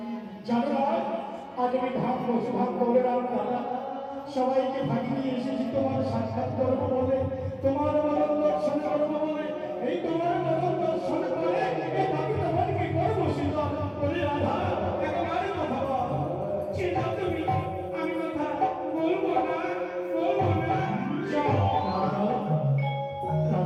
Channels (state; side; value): identical; both; correlation 1.00